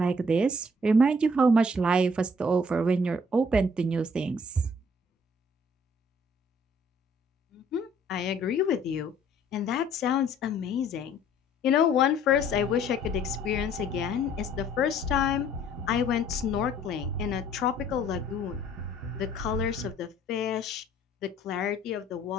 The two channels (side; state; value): both; normal; correlation 0.58